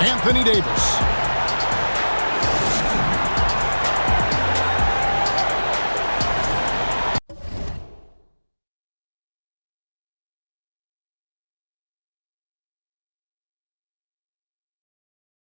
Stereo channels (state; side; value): inverted; both; correlation -1.00